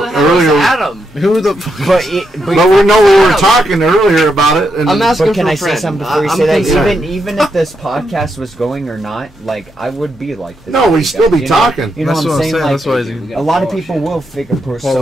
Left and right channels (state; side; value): normal; both; correlation 0.82